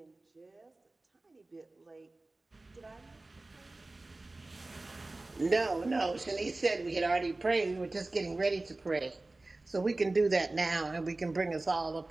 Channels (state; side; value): quieter; left; 3.0 dB